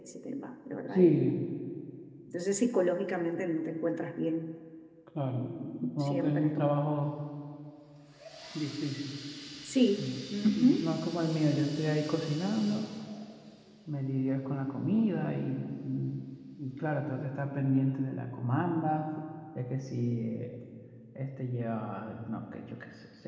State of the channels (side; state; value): both; identical; correlation 1.00